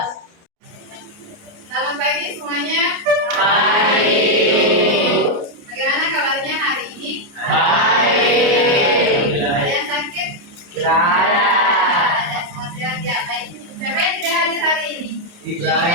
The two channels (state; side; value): late; left; 29 ms